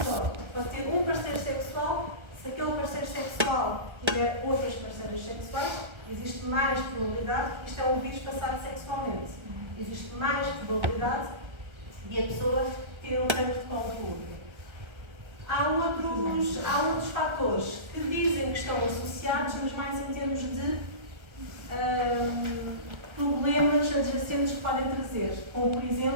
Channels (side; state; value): left; late; 1.3 ms